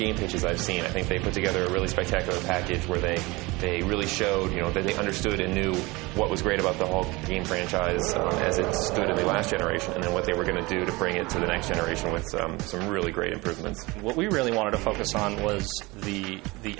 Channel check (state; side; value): quieter; left; 23.2 dB